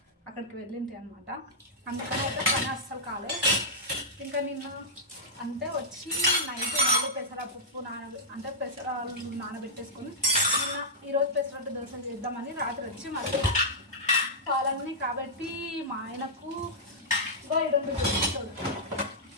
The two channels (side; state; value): both; normal; correlation -0.11